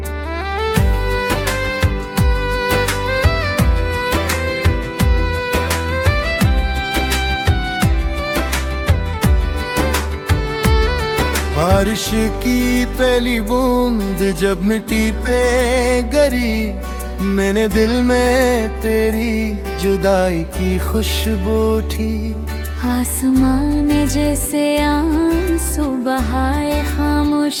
बारिश की पहली बूंद जब मिट्टी पे गिरी, मैंने दिल में तेरी जुदाई की खुशबू उठी। आसमान ने जैसे आंसू बहाए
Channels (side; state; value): both; identical; correlation 1.00